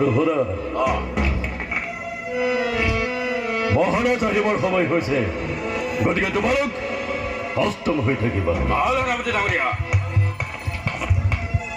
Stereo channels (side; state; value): both; identical; correlation 1.00